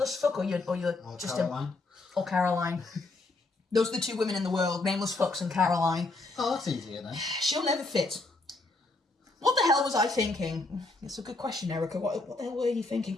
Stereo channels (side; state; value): right; quieter; 3.2 dB